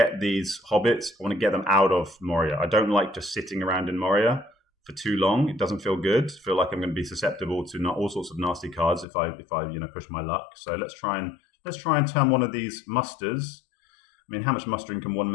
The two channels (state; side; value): drops out; right; at 9.1 s